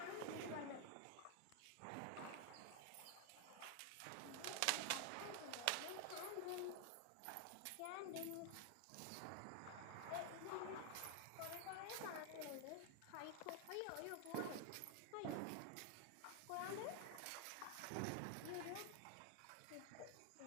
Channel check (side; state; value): both; different; correlation 0.00